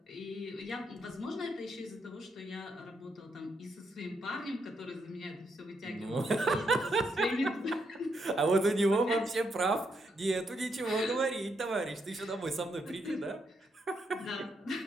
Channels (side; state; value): both; normal; correlation 0.78